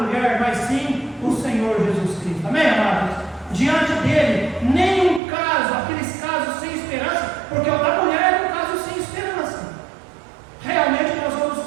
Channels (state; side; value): drops out; left; at 5.2 s